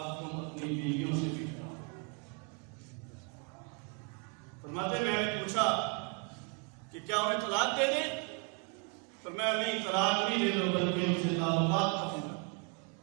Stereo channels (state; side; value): quieter; left; 36.4 dB